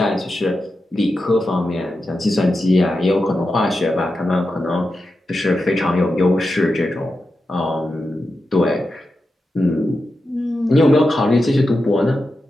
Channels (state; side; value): normal; both; correlation 0.90